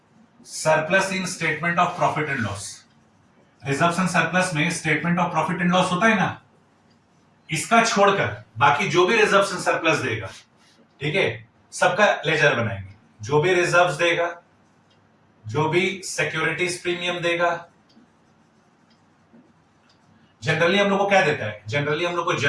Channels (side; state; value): both; identical; correlation 1.00